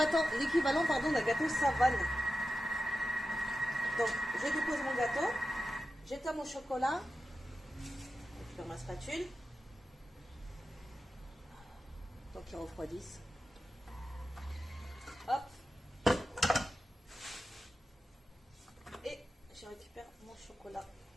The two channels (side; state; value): both; normal; correlation 0.92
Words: d'un gâteau savane. Donc, je dépose mon gâteau. J'éteins mon chocolat. Je prends ma spatule. Donc, il refroidisse. Hop. Et je récupère mon chocolat.